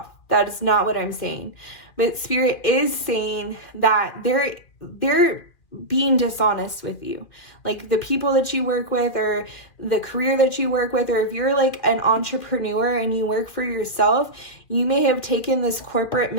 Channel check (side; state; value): right; late; 2.4 ms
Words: That is not what I'm saying. But Spirit is saying that they're being dishonest with you. Like, the people that you work with, or the career that you work with, or if you're like an entrepreneur and you work for yourself, you may have taken this corporate